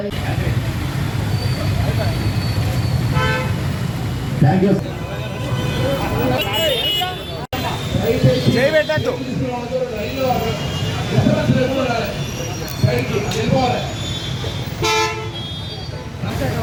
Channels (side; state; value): both; identical; correlation 1.00